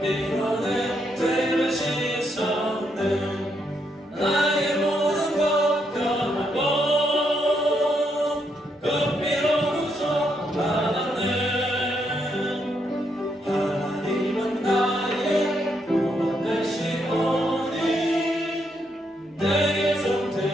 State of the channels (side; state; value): both; normal; correlation 0.77